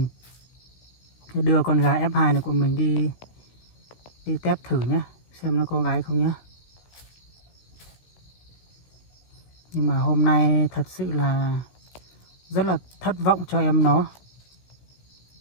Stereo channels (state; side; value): late; right; 16 ms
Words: sẽ đưa con gà F2 này của mình đi test thử nhé, xem nó có gái không nhé. Nhưng mà hôm nay thật sự là rất là thất vọng cho em nó.